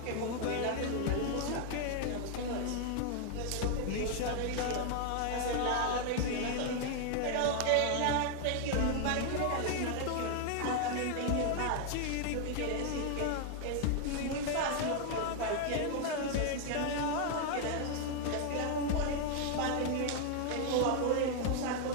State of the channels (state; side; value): different; both; correlation 0.00